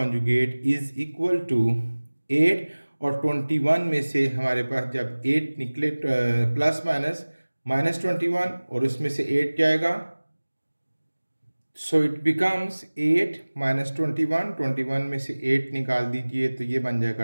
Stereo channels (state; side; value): inverted; both; correlation -1.00